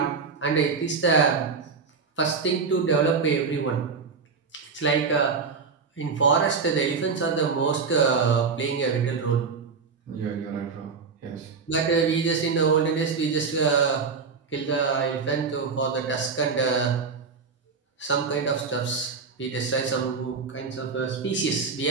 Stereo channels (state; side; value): quieter; left; 5.1 dB